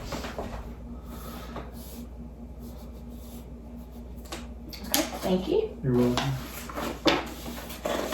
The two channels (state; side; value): identical; both; correlation 1.00